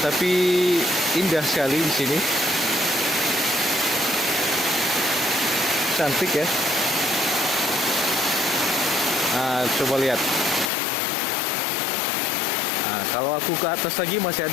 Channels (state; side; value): drops out; right; at 10.7 s